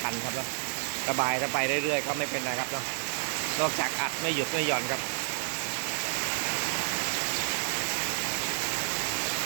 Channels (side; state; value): left; silent; digital silence